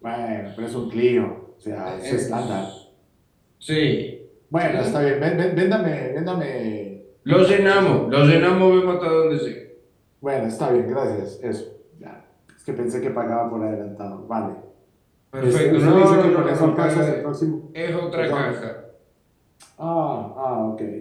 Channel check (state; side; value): identical; both; correlation 1.00